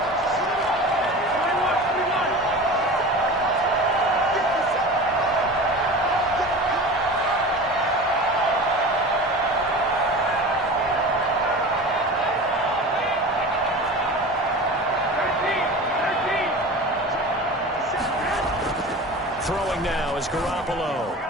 Throwing now is Garoppolo.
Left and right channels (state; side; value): normal; both; correlation 0.34